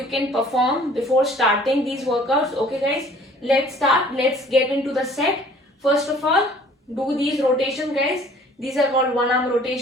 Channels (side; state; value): both; normal; correlation 0.53